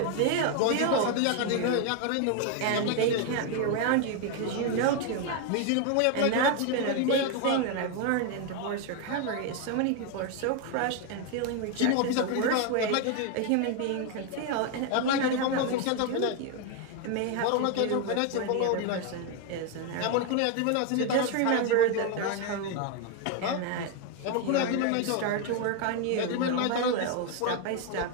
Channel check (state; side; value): different; both; correlation 0.01